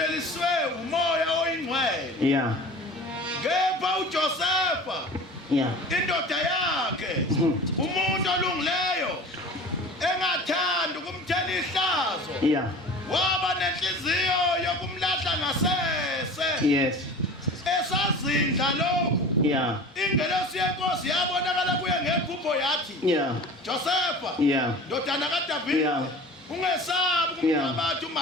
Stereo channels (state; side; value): normal; both; correlation 0.39